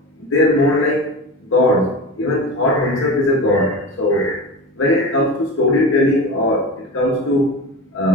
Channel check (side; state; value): both; normal; correlation 0.28